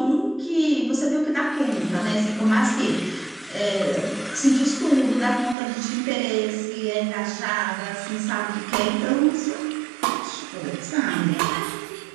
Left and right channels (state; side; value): drops out; left; at 5.6 s